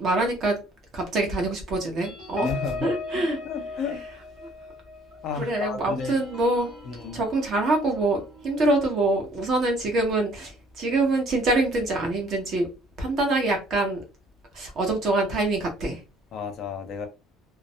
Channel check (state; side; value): normal; both; correlation 0.59